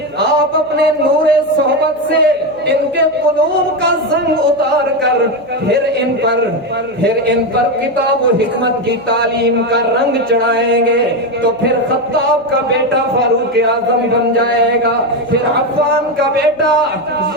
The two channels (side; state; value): right; noise; hum, 26 dB below the sound